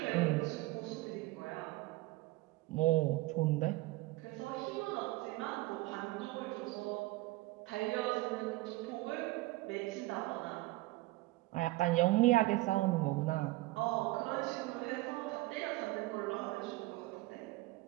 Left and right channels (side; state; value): left; quieter; 19.6 dB